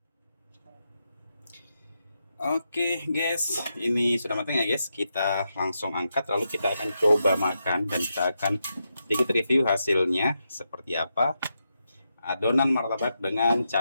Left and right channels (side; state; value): both; inverted; correlation -0.85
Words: Oke guys, ini sudah matang ya guys. Kita langsung angkat, lalu kita akan coba makan dan kita akan sedikit review hasilnya seperti apa. Adonan martabak dengan